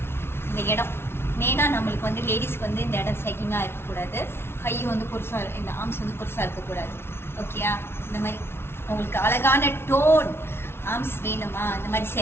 இந்த இடம் மெயினா நம்மளுக்கு வந்து லேடிஸ்க்கு வந்து இந்த இடம் செகிங்கா இருக்கக்கூடாது. கை வந்து பெருசா, இந்த ஆர்ம்ஸ் வந்து பெருசா இருக்கக்கூடாது. ஓகேயா? இந்த மாதிரி உங்களுக்கு அழகான டோன் ஆர்ம்ஸ் வேணுமா? இந்த மாதிரி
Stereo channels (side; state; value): right; late; 0.12 ms